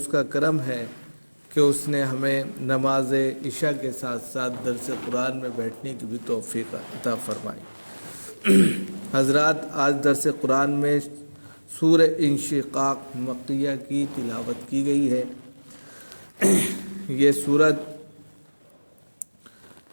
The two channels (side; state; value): both; inverted; correlation -1.00